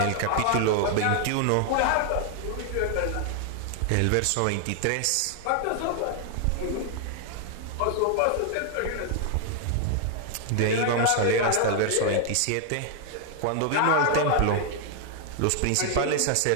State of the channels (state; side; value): different; both; correlation 0.00